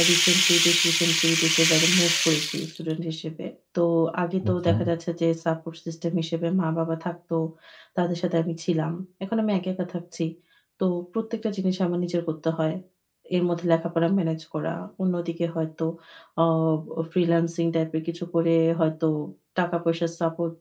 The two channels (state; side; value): identical; both; correlation 1.00